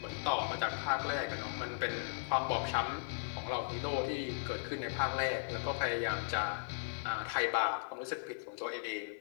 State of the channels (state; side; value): silent; right; 53 dB below the other